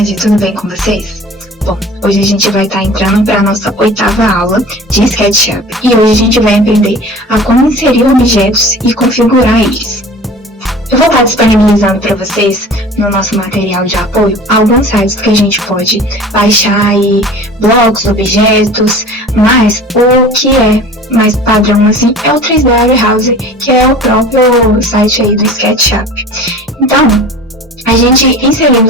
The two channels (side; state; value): both; normal; correlation 0.41